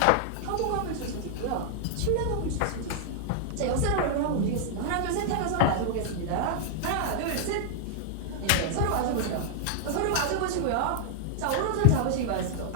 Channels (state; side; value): different; both; correlation -0.01